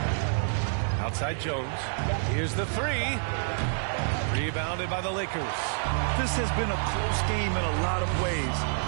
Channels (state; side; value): silent; left; digital silence